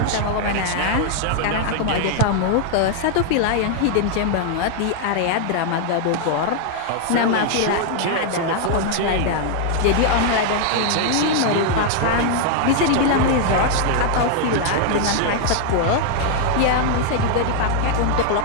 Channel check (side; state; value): both; different; correlation 0.00